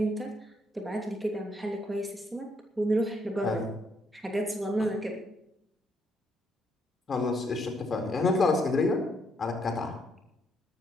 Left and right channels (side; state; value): both; normal; correlation 0.73